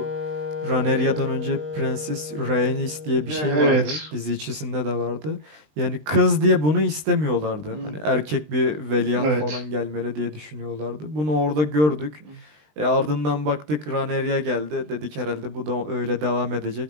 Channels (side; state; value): left; late; 20 ms